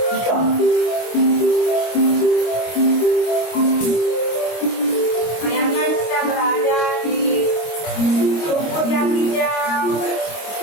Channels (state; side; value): late; right; 25 ms